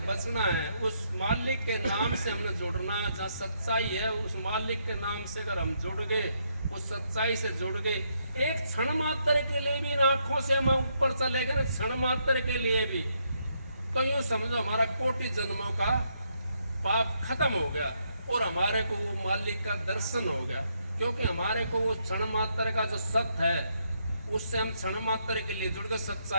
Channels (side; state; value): both; inverted; correlation -0.76